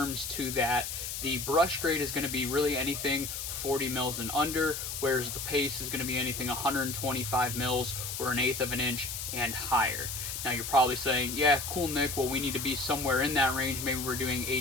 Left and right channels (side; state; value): left; noise; hiss, 5 dB below the sound